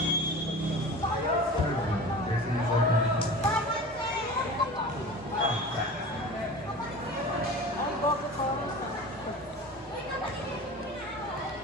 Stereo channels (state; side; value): normal; both; correlation 0.36